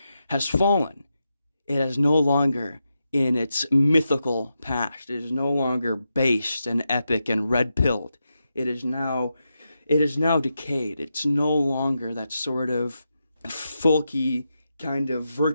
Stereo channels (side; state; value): both; inverted; correlation -0.87